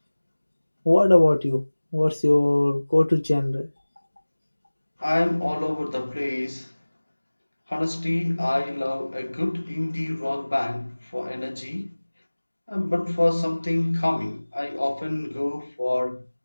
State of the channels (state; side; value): inverted; both; correlation -1.00